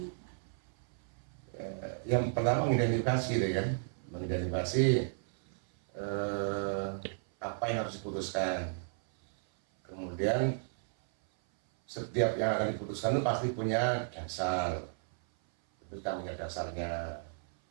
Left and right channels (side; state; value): left; silent; 55 dB below the other